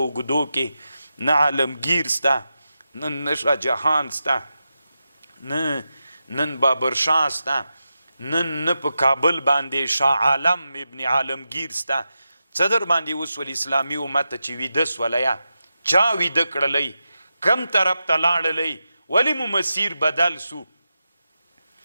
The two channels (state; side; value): inverted; both; correlation -0.90